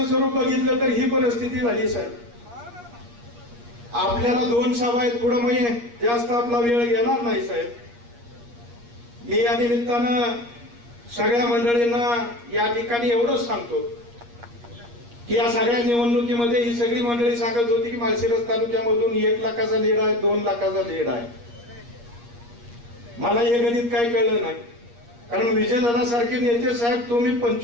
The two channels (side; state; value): left; late; 8.5 ms